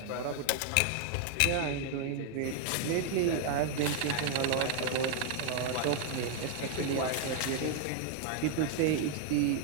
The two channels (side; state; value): both; different; correlation 0.00